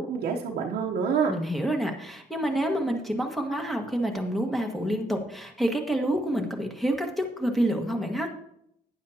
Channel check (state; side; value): normal; both; correlation 0.75